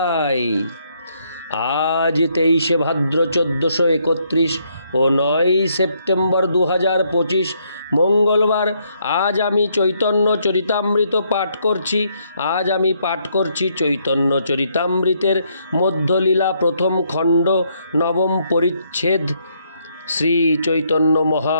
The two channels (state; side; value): inverted; both; correlation -0.73